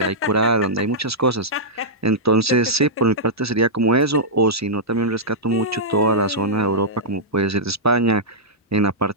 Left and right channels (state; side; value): normal; both; correlation -0.11